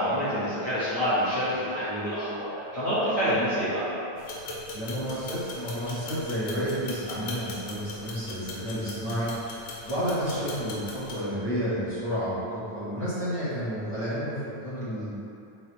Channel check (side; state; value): right; late; 9.1 ms